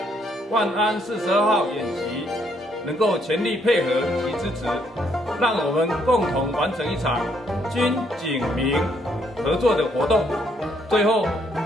万安42号演习能够全力配合及支持，让我们共同完成一场军警民合作的活动。最后，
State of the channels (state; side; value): normal; both; correlation 0.70